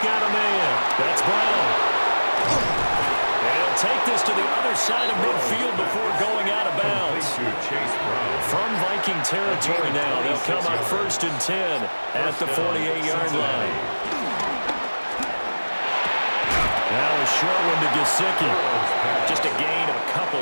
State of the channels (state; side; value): inverted; both; correlation -1.00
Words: got a man. That's Brown. And he'll take this to the other side of midfield before going out of bounds. From Viking territory now, they'll come up 1st and 10 at the 48-yard line. Now a short one to Gesicki. Just a gain of a couple